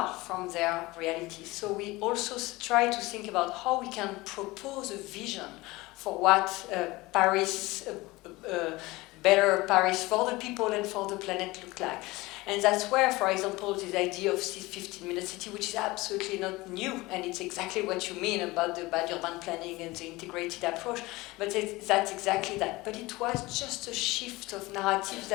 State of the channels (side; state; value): right; quieter; 21.0 dB